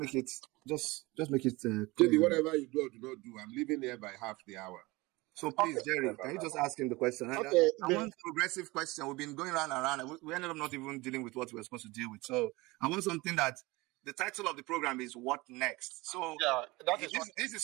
it just make it Maybe whatever you do or do not do, I'm leaving here by half the hour. So please, Jerry, can you just ask him the question? Okay, I want a progressive question. We've been going round and round, and we ended up not even dealing with what we were supposed to deal with. So I want something that the title of the program is "What Next." So yeah, this is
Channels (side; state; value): left; quieter; 22.4 dB